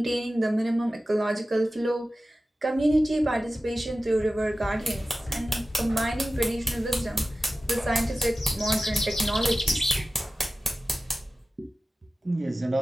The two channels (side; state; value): both; normal; correlation 0.95